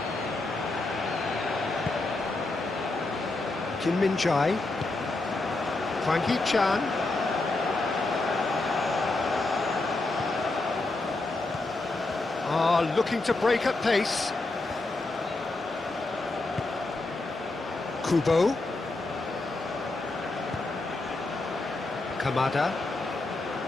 Kim Min-jae, Hwang Hee-chan, looking to break at pace. Kubo, Kamada.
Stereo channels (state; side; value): quieter; right; 3.1 dB